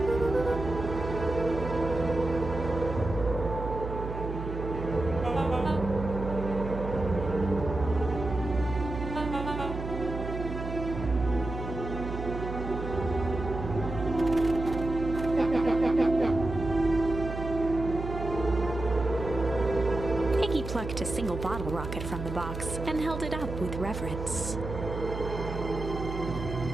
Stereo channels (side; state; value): right; noise; hum, 6 dB below the sound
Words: Plucked a single bottle rocket from the box and held it up with reverence.